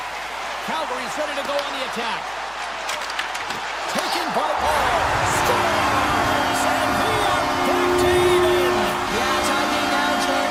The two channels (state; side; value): noise; right; hum, 26 dB below the sound